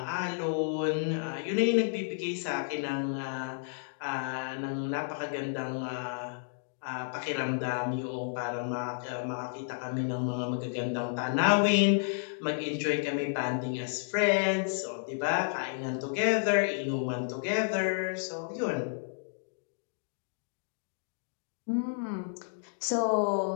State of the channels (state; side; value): silent; right; digital silence